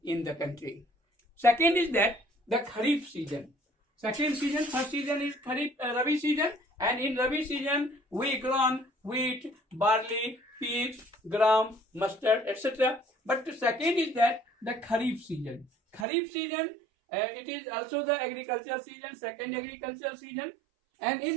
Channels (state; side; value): drops out; left; at 16.1 s